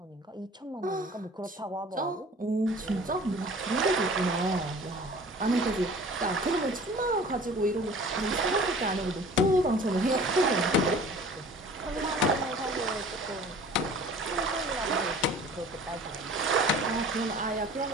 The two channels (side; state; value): both; normal; correlation 0.46